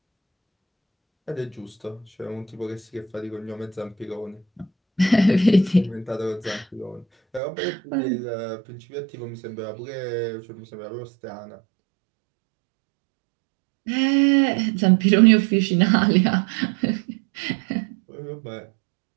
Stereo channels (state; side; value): drops out; left; at 7.4 s